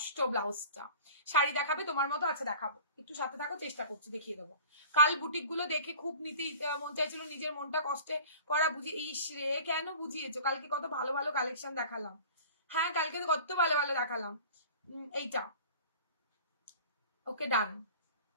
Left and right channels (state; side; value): inverted; both; correlation -0.42